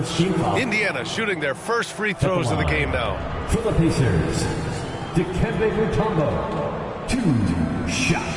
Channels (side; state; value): both; identical; correlation 1.00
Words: Indiana shooting their first free throws of the game now. For the Pacers, Dikembe Mutombo, 2